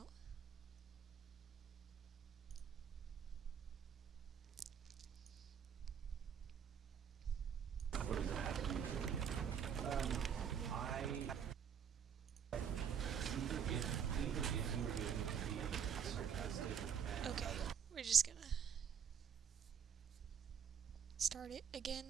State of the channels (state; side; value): quieter; left; 7.8 dB